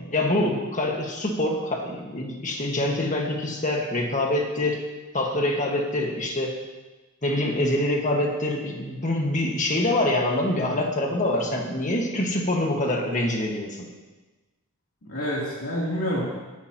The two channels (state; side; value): normal; both; correlation 0.30